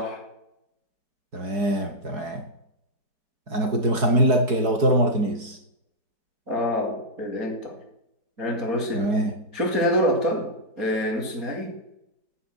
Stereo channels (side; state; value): left; late; 4.7 ms